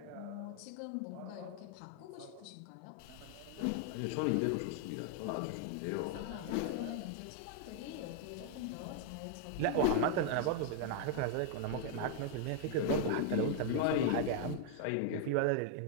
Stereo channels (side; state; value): both; different; correlation 0.00